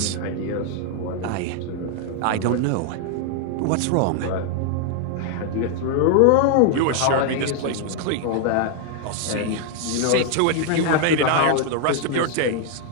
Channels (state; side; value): different; both; correlation 0.00